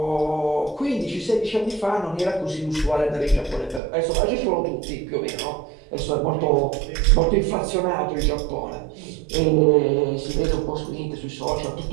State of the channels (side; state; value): left; drops out; at 3.8 s